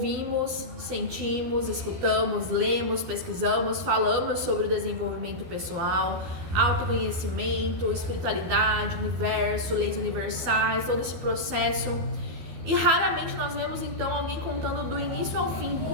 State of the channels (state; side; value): late; left; 12 ms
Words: sentimos, escutamos, lemos, pesquisamos, falamos sobre o desenvolvimento pessoal, autoconhecimento, espiritualidade, universo, leis universais, todo esse processo. E raramente nós vemos então alguém contando do início ao fim